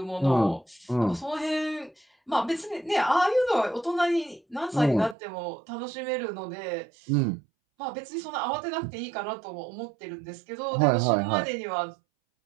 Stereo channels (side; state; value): left; drops out; at 5.2 s